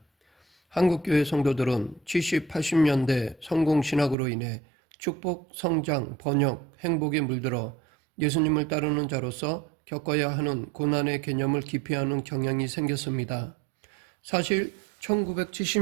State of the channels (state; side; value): drops out; left; at 4.2 s